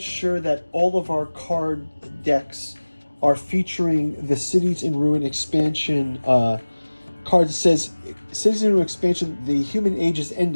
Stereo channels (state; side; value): inverted; both; correlation -1.00